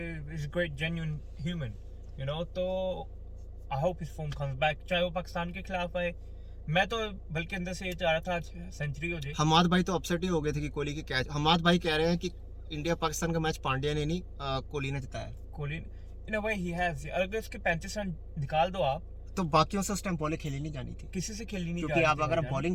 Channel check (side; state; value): both; identical; correlation 1.00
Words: great genuine human, you know. तो I hope his form comes back, चाहे वो पाकिस्तान के खिलाफ आए। मैं तो बल्कि अंदर से ये चाह रहा था आज सेंचुरी हो जाए। हमाद भाई तो अपसेट ही हो गए थे कि कोहली की कैच। हमाद भाई कह रहे हैं कि इंडिया पाकिस्तान का मैच पांड्या ने नहीं कोहली ने जिताया। कोहली इन अ वे ही हैज, अगर उसके 35 रन निकाल दो आप, तो बाकियों से उस टाइम बॉलिंग खेली नहीं जानी थी, किसी से खेली नहीं, क्योंकि आप अगर